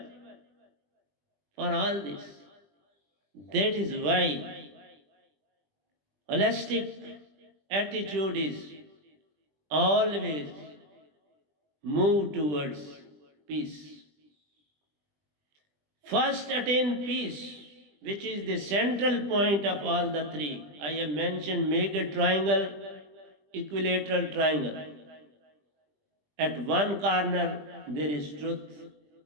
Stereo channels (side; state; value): left; late; 20 ms